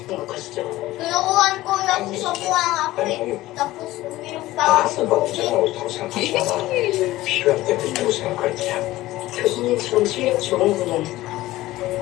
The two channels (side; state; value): right; quieter; 16.9 dB